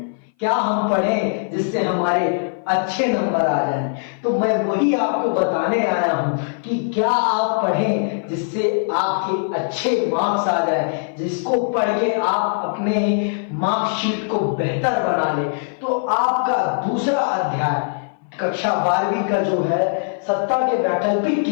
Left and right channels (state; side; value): silent; right; 59 dB below the other